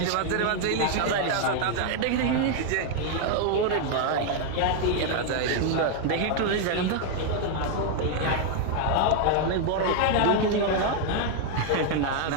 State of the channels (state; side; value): different; both; correlation 0.01